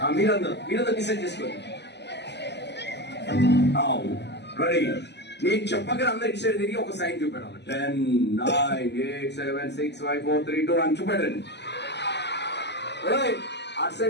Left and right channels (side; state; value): right; late; 0.50 ms